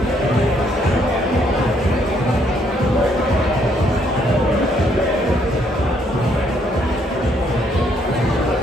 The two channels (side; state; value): both; normal; correlation 0.69